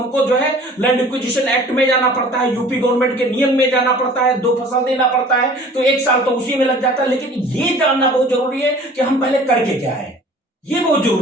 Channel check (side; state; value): both; normal; correlation 0.47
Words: जो है लैंड एक्विजिशन एक्ट में जाना पड़ता है, यूपी गवर्नमेंट के नियम में जाना पड़ता है, 2 फसल देना पड़ता है, तो 1 साल तो उसी में लग जाता है। लेकिन ये जानना बहुत जरूरी है कि हम पहले करके क्या है, ये बहुत